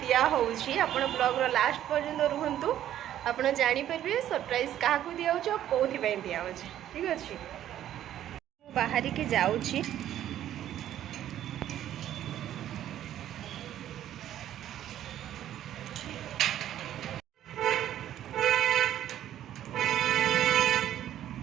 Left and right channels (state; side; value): quieter; left; 11.7 dB